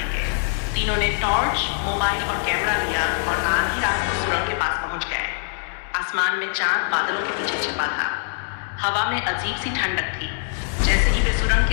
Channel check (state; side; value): silent; right; digital silence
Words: तीनों ने टॉर्च, मोबाइल और कैमरा लिया और आधी रात को सुरंग के पास पहुंच गए। आसमान में चांद बादलों के पीछे छिपा था। हवा में अजीब सी ठंडक थी। जैसे ही वे सुरंग